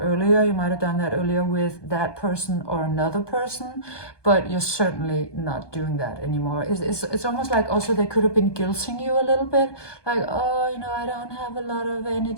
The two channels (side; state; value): right; late; 1.2 ms